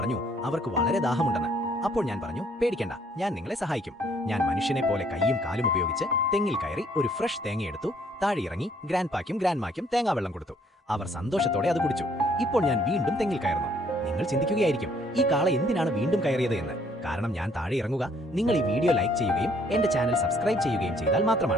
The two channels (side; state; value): both; normal; correlation 0.63